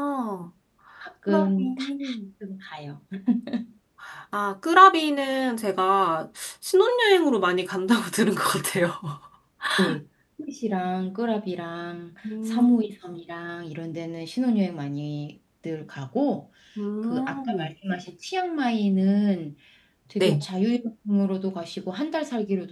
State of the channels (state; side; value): identical; both; correlation 1.00